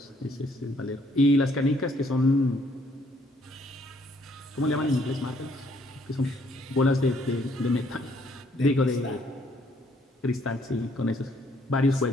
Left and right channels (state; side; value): normal; both; correlation 0.66